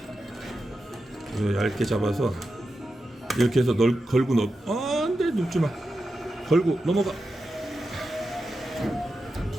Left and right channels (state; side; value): normal; both; correlation 0.90